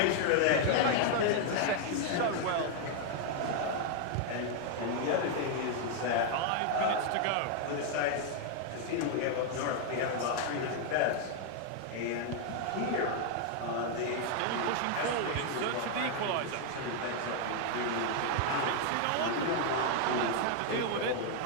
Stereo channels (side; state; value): both; different; correlation 0.00